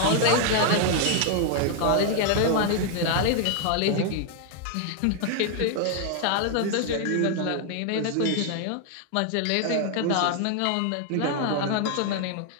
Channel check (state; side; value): different; both; correlation 0.00